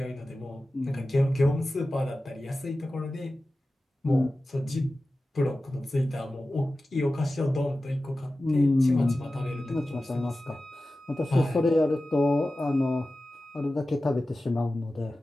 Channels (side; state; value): both; normal; correlation 0.95